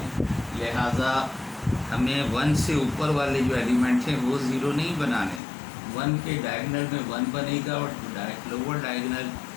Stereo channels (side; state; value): right; drops out; at 5.4 s